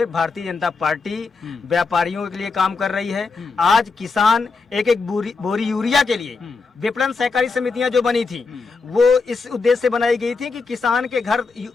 भारतीय जनता पार्टी व्यापारियों के लिए काम कर रही है। आज किसान एक एक बोरी यूरिया के लिए विपणन सहकारी समितियां जो बनी थी, वो इस उद्देश्य से बनाई गई थी कि किसान के घर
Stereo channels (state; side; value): quieter; right; 4.4 dB